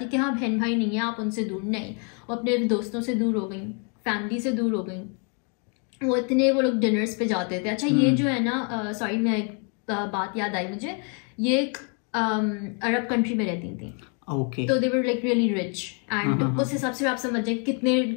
कि हाँ बहन भाई नहीं है, आप उनसे दूर नहीं, वो अपने दोस्तों से दूर हो गई, फैमिली से दूर हो गई। वो लोग डिनर्स पे जाते थे। अच्छा ये जो है ना, सॉरी मैं एक बात याद आई मुझे, ये एक अरब कंट्री में रहती थी, ओके, तो they were like really rich and उस हिसाब से आप समझ जाए कितने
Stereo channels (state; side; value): quieter; right; 38.9 dB